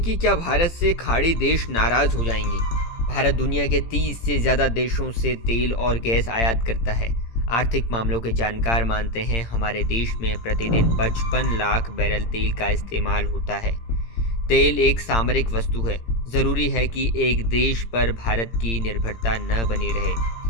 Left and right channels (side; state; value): right; late; 18 ms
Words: क्या भारत से खाड़ी देश नाराज हो जाएंगे? भारत दुनिया के 30 से ज़्यादा देशों से तेल और गैस आयात करता है। आर्थिक मामलों के जानकार मानते हैं हमारे देश में प्रतिदिन 55 लाख बैरल तेल का इस्तेमाल होता है। तेल एक सामरिक वस्तु है। ज़रूरी है कि एक देश पर भारत की निर्भरता न बनी